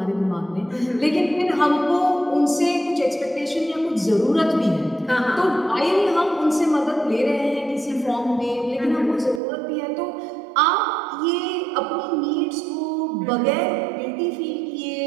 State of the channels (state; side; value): drops out; left; at 9.4 s